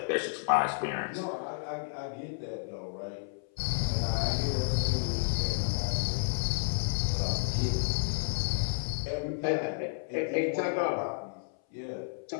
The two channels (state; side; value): silent; right; 57 dB below the other